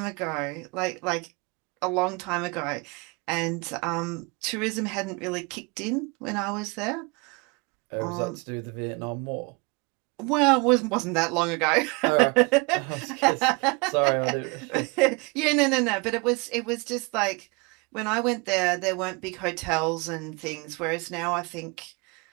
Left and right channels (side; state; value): left; quieter; 29.4 dB